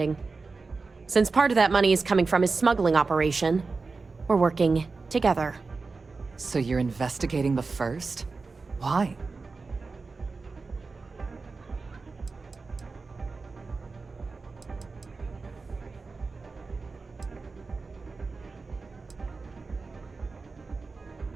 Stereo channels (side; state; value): left; quieter; 4.1 dB